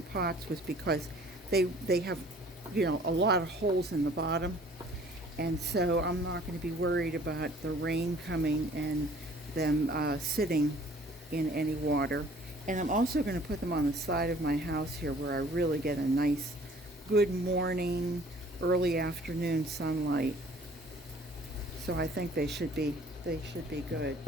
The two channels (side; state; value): both; normal; correlation 0.54